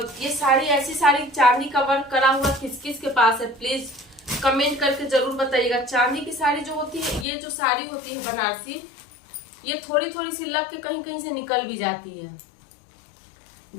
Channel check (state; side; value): drops out; right; at 7.2 s